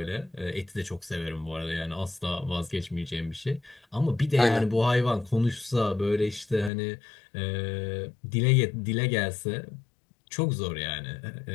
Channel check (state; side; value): drops out; right; at 6.7 s